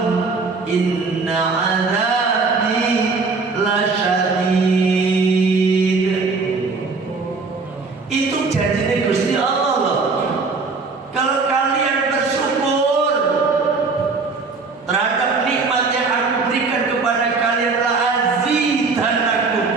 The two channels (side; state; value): left; quieter; 4.3 dB